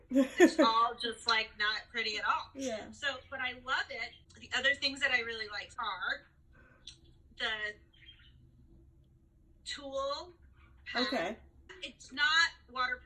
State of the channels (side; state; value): both; identical; correlation 1.00